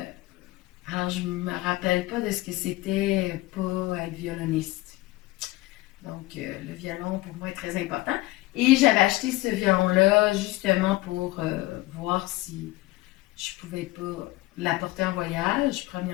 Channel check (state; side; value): quieter; right; 19.3 dB